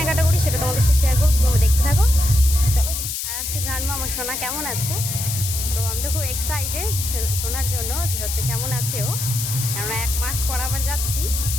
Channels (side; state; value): left; noise; hiss, 4 dB below the sound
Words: করি সেটা তোমাদের সাথে শেয়ার করবো, তোমরা দেখতে থাকো। চলো, আর আজকে জানবো আমার সোনা কেমন আছে। তো আমি তো খুব এক্সাইটেড শোনার জন্য যে হচ্ছে কেমন আছে ও, কেননা 1 মাস পর আবার যাচ্ছি।